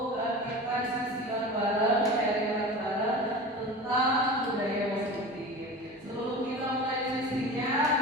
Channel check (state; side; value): normal; both; correlation 0.32